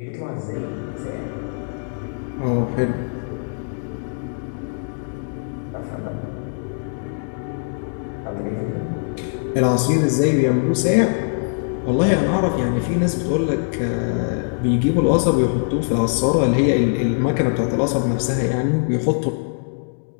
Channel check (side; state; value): right; silent; 64 dB below the other